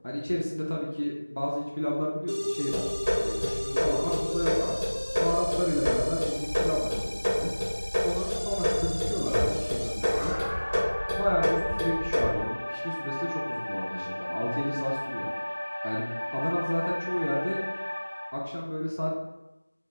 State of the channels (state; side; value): inverted; both; correlation -1.00